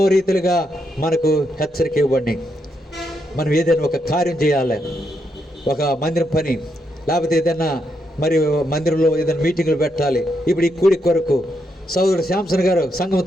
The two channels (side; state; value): both; normal; correlation 0.80